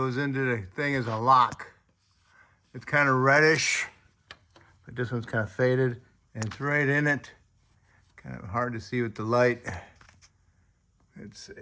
into the thing as a lock. It's kind of reddish, but this one's kind of faded, and it's right in it. Kind of hard to see with the light. Let's see.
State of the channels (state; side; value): identical; both; correlation 1.00